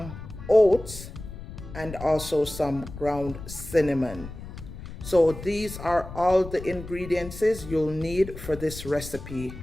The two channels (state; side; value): noise; left; rumble, 12 dB below the sound